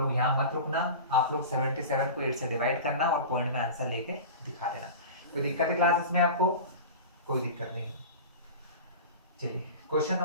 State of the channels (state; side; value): inverted; both; correlation -0.32